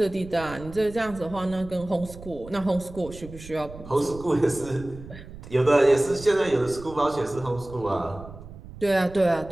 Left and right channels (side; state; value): right; noise; rumble, 16 dB below the sound